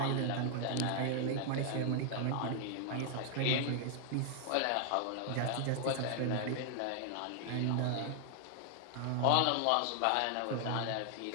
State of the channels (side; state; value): both; different; correlation 0.00